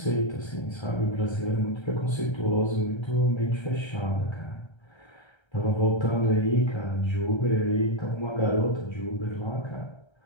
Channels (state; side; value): late; right; 1.3 ms